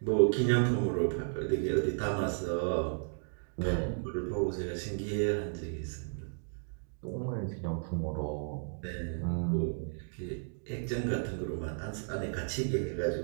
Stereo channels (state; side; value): silent; left; digital silence